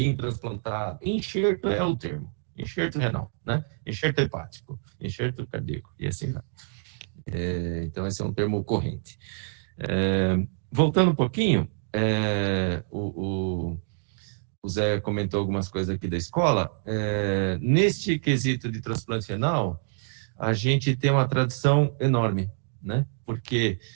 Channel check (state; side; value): silent; left; digital silence